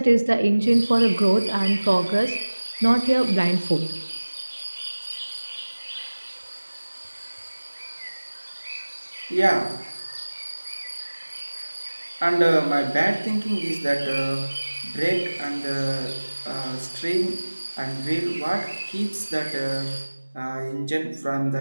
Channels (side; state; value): both; inverted; correlation -1.00